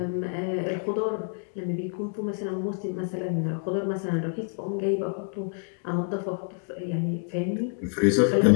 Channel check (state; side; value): silent; right; 55 dB below the other